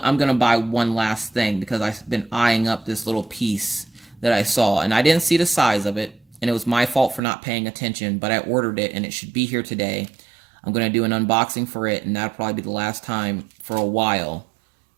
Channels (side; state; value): left; drops out; at 7.2 s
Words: to buy one last thing because I've been eyeing up this little piece that I saw, and I didn't see the size of it, and it was my fault for not paying attention, but I ordered it, and it should be here today. I'm going to do an unboxing for it, and that'll probably be the last time for a while